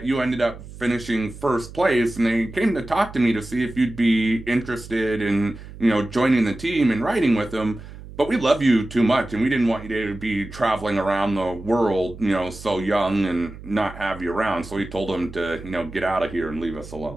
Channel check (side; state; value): right; noise; hum, 15 dB below the sound